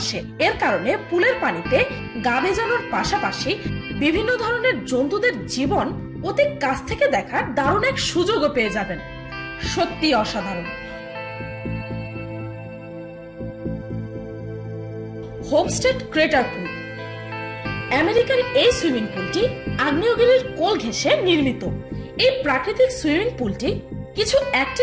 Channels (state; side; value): identical; both; correlation 1.00